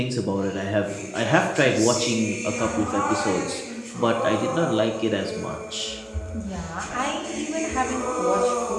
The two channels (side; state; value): both; identical; correlation 1.00